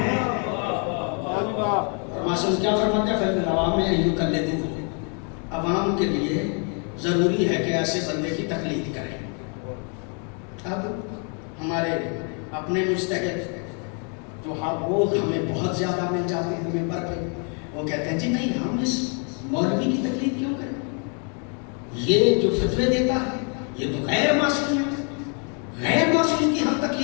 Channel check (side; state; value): right; quieter; 39.8 dB